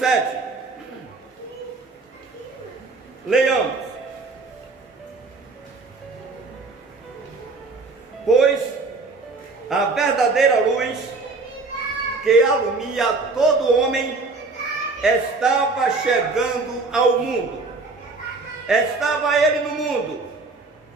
Leiamos. Pois a verdadeira luz que alumia todo homem estava chegando ao mundo. Estava ele no mundo,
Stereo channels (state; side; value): quieter; left; 3.8 dB